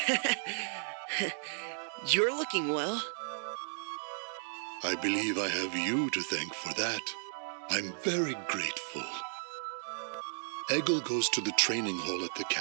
You're looking well. I believe I have you to thank for that. I'm very grateful. Egil goes to the training hall at the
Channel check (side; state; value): left; silent; digital silence